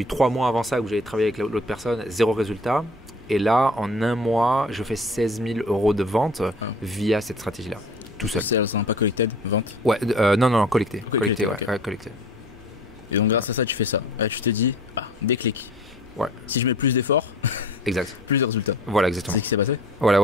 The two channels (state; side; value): normal; both; correlation 0.46